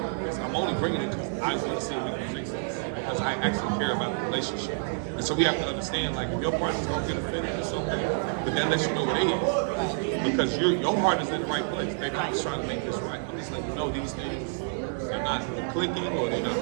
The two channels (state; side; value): silent; left; 59 dB below the other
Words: only bringing it because I want to see if we can fix this. Because I actually care about the relationship. And so we have to understand, like, if your partner's gonna get offended, it's okay. But that lets you know they is. Because your heart is in the right place. Baby, I'm just trying to make this right. I'm just letting you know these things are not clicking or they're not